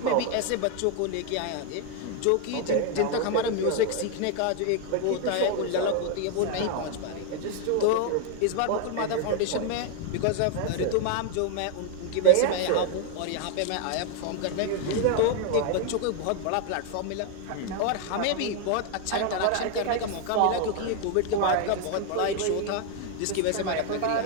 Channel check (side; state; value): both; different; correlation 0.00